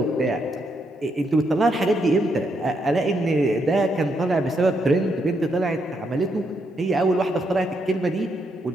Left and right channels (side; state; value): both; normal; correlation 0.78